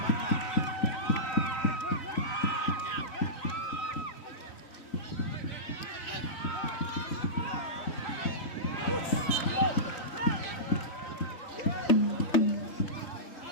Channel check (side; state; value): right; late; 3.9 ms